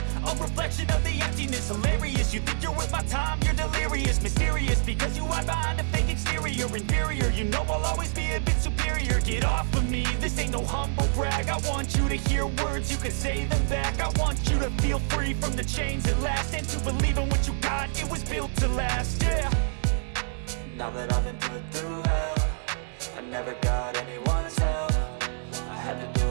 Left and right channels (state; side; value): silent; left; 60 dB below the other